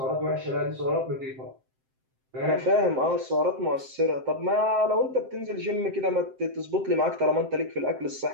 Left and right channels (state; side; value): late; left; 7.7 ms